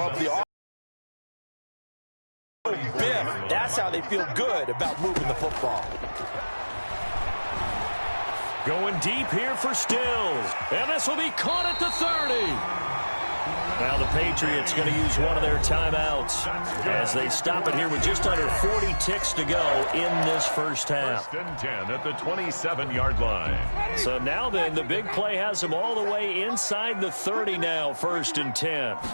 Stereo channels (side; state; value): both; inverted; correlation -1.00